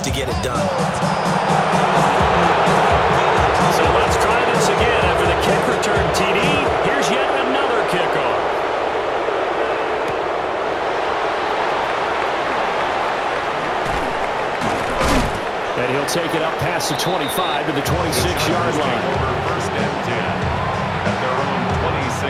to get it done. So let's try this again after the kick return TD. Here's yet another kickoff. And he'll take it up past the 25 to the 26-yard line. First and 10 at their own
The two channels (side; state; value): both; identical; correlation 1.00